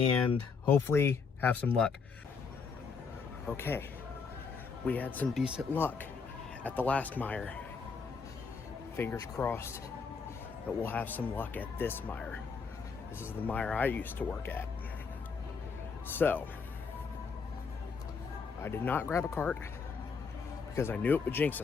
hopefully have some luck. Okay. We had some decent luck at the last mire. Fingers crossed that we'll have some luck at this mire. This is the mire I used to work at. So, I did not grab a cart because I knew it would jinx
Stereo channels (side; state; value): right; quieter; 5.3 dB